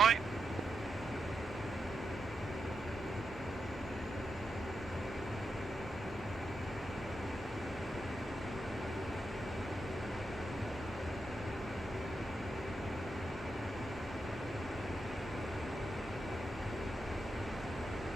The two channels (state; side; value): normal; both; correlation 0.86